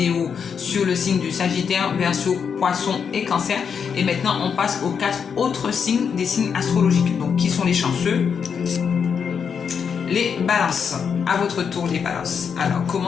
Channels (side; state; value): right; quieter; 6.7 dB